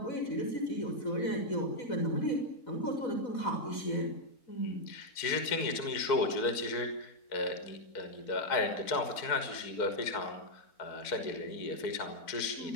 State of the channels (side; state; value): right; late; 4.6 ms